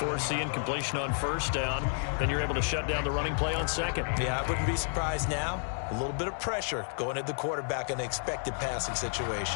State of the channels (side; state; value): right; silent; digital silence